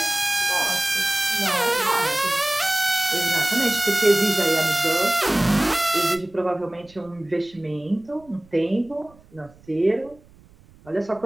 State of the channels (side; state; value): right; noise; rumble, 27 dB below the sound